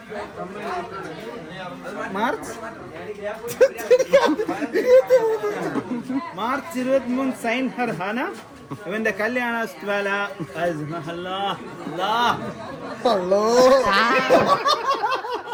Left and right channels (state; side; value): identical; both; correlation 1.00